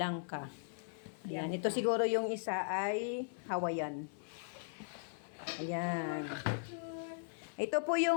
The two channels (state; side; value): silent; right; 52 dB below the other